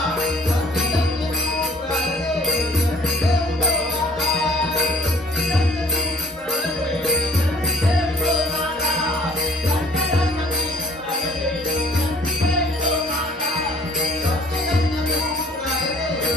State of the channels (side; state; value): both; normal; correlation 0.54